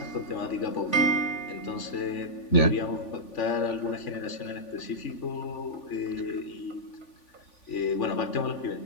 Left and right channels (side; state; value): right; late; 3.5 ms